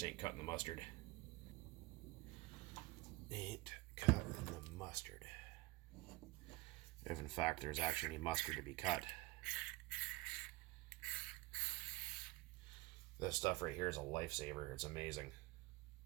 ain't cutting the mustard. Ain't cutting the mustard. If in fact there's actually any mustard to be cut. This stuff right here is a lifesaver. It's amazing.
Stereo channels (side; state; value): left; quieter; 21.2 dB